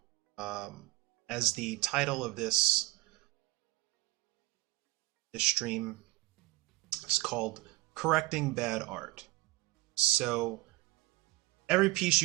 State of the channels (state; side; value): quieter; left; 20.5 dB